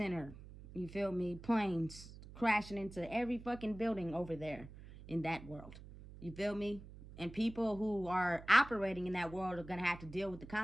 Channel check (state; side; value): noise; right; hum, 16 dB below the sound